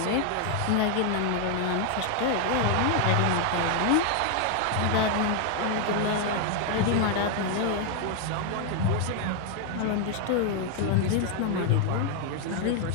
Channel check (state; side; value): different; both; correlation 0.00